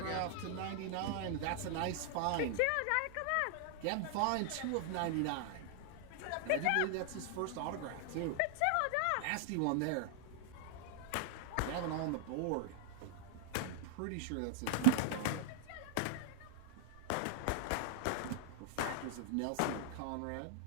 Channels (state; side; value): different; both; correlation 0.00